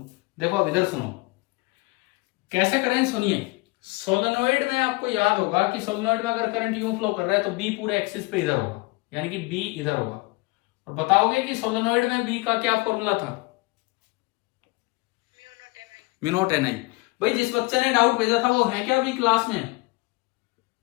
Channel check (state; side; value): quieter; right; 24.6 dB